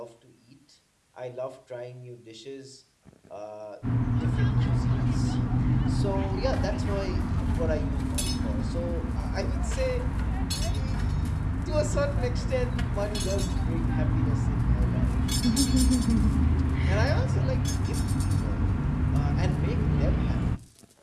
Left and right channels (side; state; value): both; identical; correlation 1.00